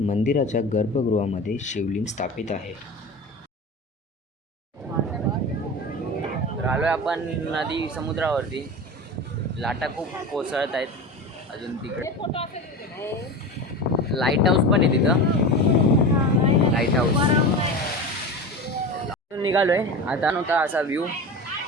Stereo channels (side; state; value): both; normal; correlation 0.28